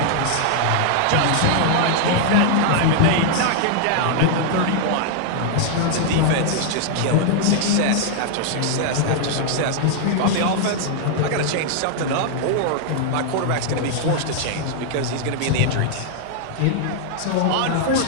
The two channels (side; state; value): both; different; correlation -0.01